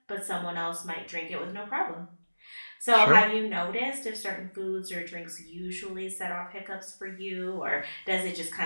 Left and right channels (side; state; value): both; inverted; correlation -1.00